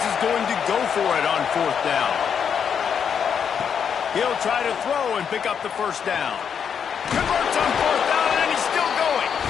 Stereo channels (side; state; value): right; quieter; 7.4 dB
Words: is going to go for it on fourth down. He'll try to throw and pick up the first down. Converts on fourth down, and he's still going.